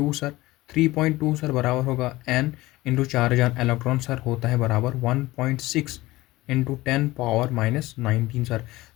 सर, 3.2 सर बराबर होगा N into charge on electron sir होता है बराबर 1.6 इंटू 10⁻⁻19 सर।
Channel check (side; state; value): right; quieter; 18.8 dB